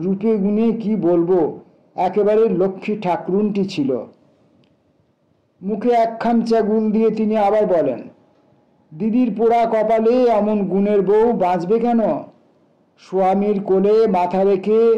গুণে কি বলবো, একেবারে লক্ষ্মী ঠাকরুনটি ছিল। মুখে এক খামচা গুল দিয়ে তিনি আবার বলেন, দিদির পোড়া কপালে এমন গুণের বউ বাঁচবে কেন? স্বামীর কোলে মাথা রেখে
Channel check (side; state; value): both; identical; correlation 1.00